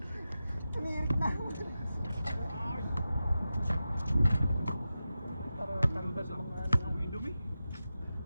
Umiirik na. Tanda sa mga amoy Indomie.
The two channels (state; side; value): inverted; both; correlation -0.92